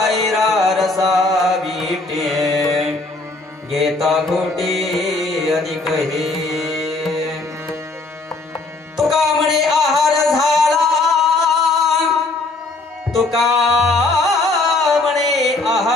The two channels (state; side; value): quieter; right; 3.3 dB